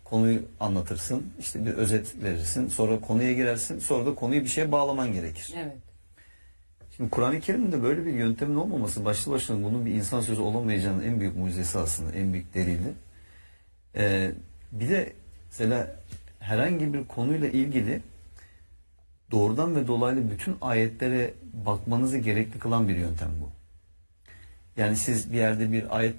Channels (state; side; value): inverted; both; correlation -1.00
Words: konuyu anlatırsın, işte bir özet verirsin, sonra konuya girersin, sonra da konuyu bir şeye bağlaman gerekir. Evet. Şimdi Kur'an-ı Kerim'de böyle bir yöntemin olmaması başlı başına bunun bir insan sözü olamayacağının en büyük mucizesi aslında, en büyük delili. Bir de mesela herhangi bir konuyla ilgili doğrudan ve dolaylı bütün ayetlere bakmanızı gerekli kılan bir yöntem bu. Yani siz bir yerde bir